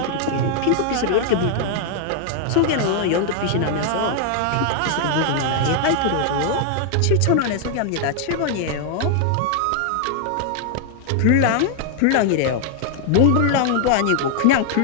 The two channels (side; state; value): both; different; correlation 0.00